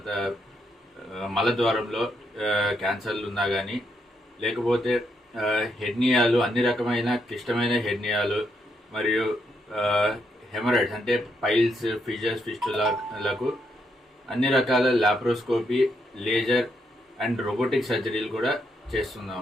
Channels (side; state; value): both; normal; correlation 0.78